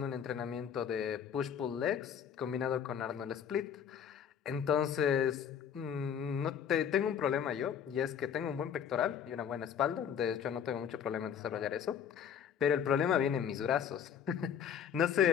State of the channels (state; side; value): quieter; right; 8.2 dB